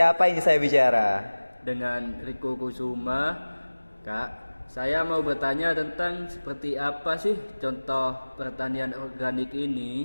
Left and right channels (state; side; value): inverted; both; correlation -1.00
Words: ini saya bicara? Dengan Riko Kusuma. Kak, saya mau bertanya tentang seperti apa sih contoh pertanian organik